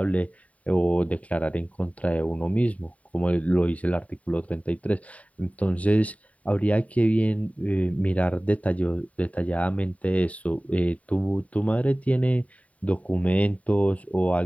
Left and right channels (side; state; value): right; late; 0.068 ms